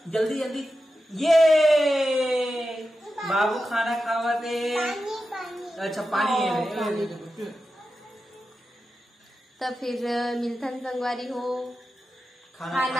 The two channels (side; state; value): both; normal; correlation 0.91